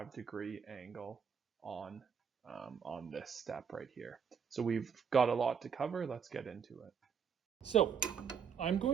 angle on this step right here. So we've got a lot to cover. Let's get into it. So I'm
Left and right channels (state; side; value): quieter; left; 7.0 dB